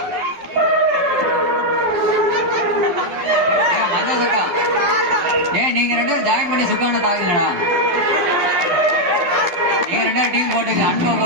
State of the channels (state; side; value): late; left; 12 ms